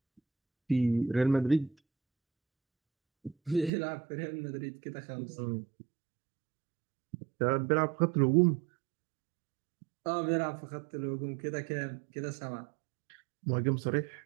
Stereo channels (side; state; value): left; drops out; at 3.7 s